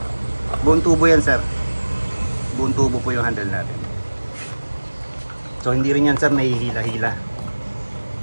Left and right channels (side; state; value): both; inverted; correlation -1.00